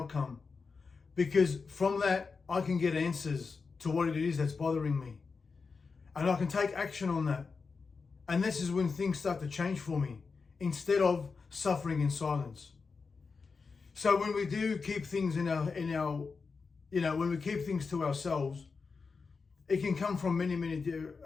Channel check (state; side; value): quieter; right; 4.8 dB